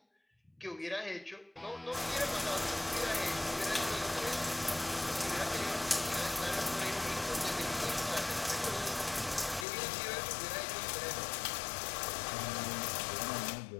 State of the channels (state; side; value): drops out; right; at 9.7 s